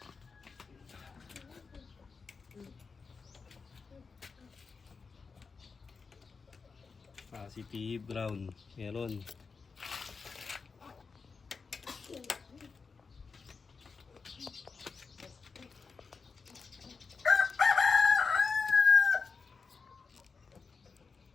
Positive brown. Meron.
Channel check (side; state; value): right; quieter; 4.9 dB